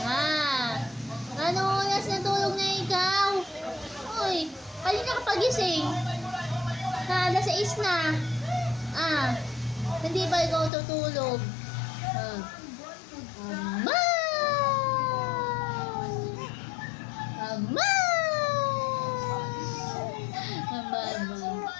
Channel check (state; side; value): drops out; right; at 10.7 s